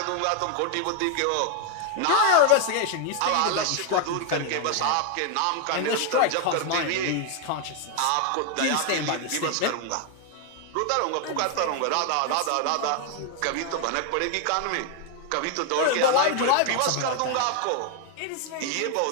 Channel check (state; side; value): different; both; correlation 0.00